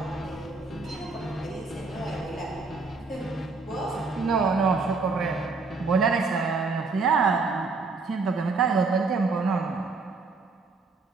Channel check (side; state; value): left; quieter; 4.1 dB